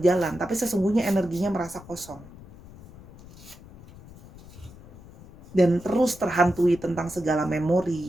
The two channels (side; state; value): left; noise; rumble, 20 dB below the sound